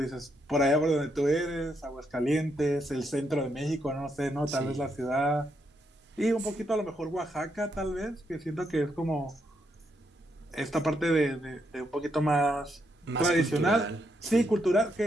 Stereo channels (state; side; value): normal; both; correlation 0.78